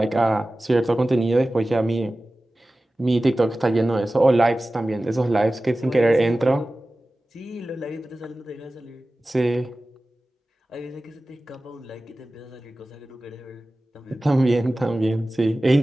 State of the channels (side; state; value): both; normal; correlation 0.96